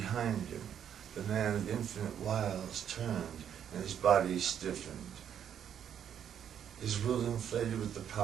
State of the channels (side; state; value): left; quieter; 9.1 dB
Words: him. The man of infinite wiles turned, and his body stiffened. His will inflated with the